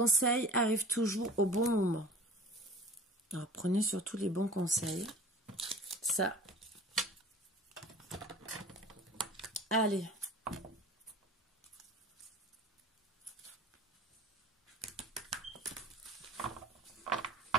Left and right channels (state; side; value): normal; both; correlation 0.42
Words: arrive toujours au bon moment. Alors, prenez surtout les bons conseils. Ça. Allez.